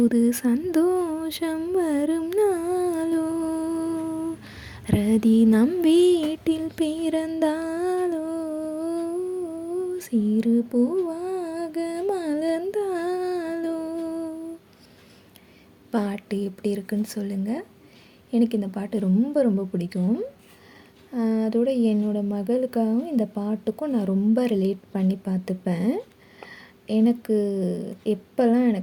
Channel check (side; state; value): both; identical; correlation 1.00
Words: சந்தோஷம் வரும் நாளோ, ரதி நம் வீட்டில் பிறந்தாலோ, சிறு பூவாக மலர்ந்தாலோ. பாட்டு எப்படி இருக்குன்னு சொல்லுங்கள். எனக்கு இந்த பாட்டு ரொம்ப ரொம்ப பிடிக்கும். அதோட என்னோடய மகளுக்காகவும் இந்த பாட்டுக்கும் நான் ரொம்ப ரிலேட் பண்ணி பார்த்துப்பேன். எனக்கு எப்போல்லாம்